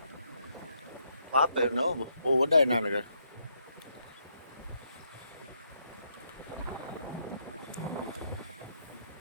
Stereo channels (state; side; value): inverted; both; correlation -0.76